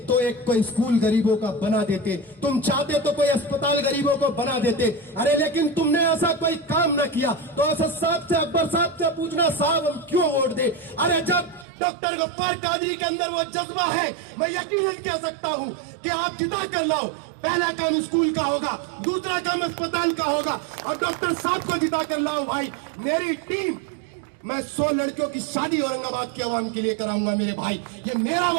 तो एक कोई स्कूल गरीबों का बना देते, तुम चाहते तो कोई अस्पताल गरीबों को बना देते। अरे लेकिन तुमने ऐसा कोई काम न किया। तो असद साहब से, अकबर साहब से पूछना, साहब हम क्यों वोट दे? अरे जब डॉक्टर गफ्फार कादरी के अंदर वो जज्बा है, मैं यकीनन कह सकता हूं कि आप जिता कर लाओ। पहला काम स्कूल का होगा, दूसरा काम अस्पताल का होगा, और डॉक्टर साहब को जिता कर लाओ। भाई मेरी टीम, मैं 100 लड़कियों की शादी औरंगाबाद की आवाम के लिए कराऊंगा मेरे भाई, ये मेरा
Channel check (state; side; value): drops out; left; at 11.7 s